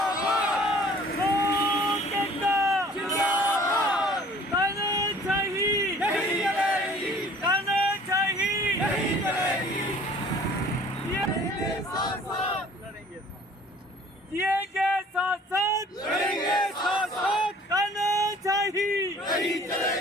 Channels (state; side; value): normal; both; correlation 0.51